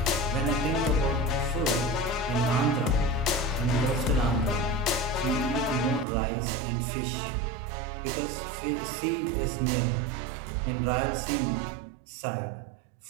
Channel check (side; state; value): left; drops out; at 6.1 s